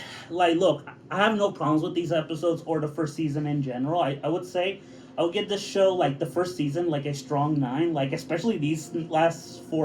like, look, I have no problems with these episodes or the first season in general. I would say I would give this show, like, the first season, like, a strong 9. Like, especially these last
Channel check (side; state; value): both; identical; correlation 1.00